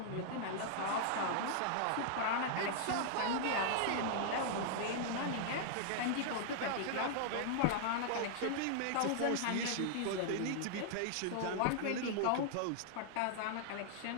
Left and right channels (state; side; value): different; both; correlation -0.01